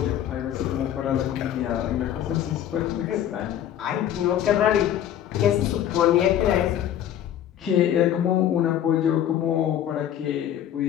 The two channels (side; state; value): right; quieter; 10.8 dB